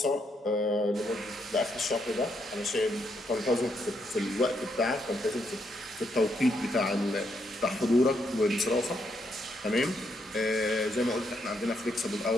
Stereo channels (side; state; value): both; normal; correlation 0.77